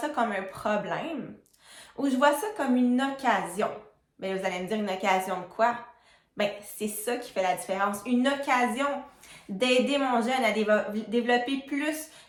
comme un problème ou je vois ça comme une occasion? Bien, vous allez me dire une occasion de quoi? Bien, c'est ça qui fait la différence. Une occasion d'aider mon jeune à développer plus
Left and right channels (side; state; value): both; identical; correlation 1.00